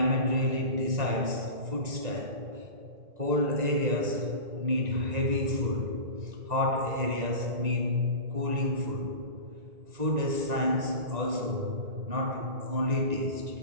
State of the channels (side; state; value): left; late; 1.9 ms